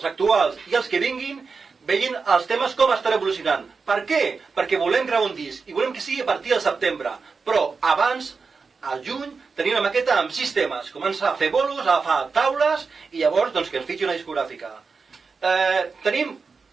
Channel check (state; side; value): quieter; left; 4.8 dB